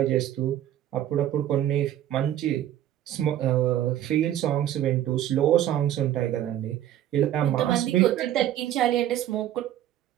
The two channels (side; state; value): left; quieter; 11.9 dB